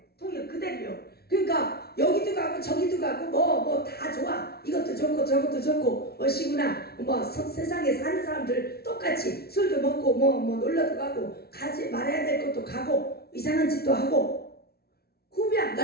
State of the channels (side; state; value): right; late; 0.45 ms